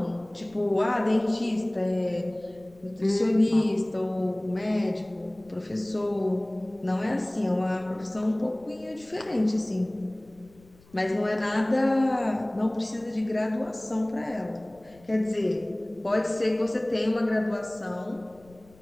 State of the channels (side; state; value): left; noise; rumble, 27 dB below the sound